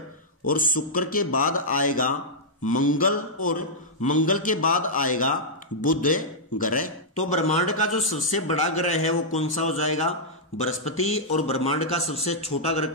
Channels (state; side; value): normal; both; correlation -0.09